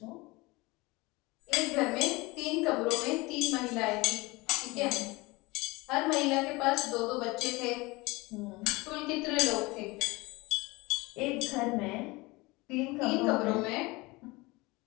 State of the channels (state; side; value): quieter; right; 23.2 dB